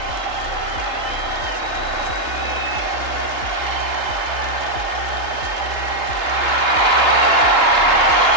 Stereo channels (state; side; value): late; left; 3.3 ms